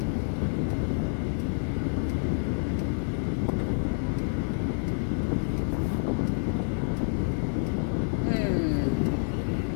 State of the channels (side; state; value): right; silent; 59 dB below the other